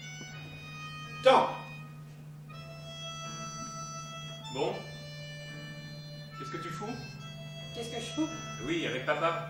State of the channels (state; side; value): identical; both; correlation 1.00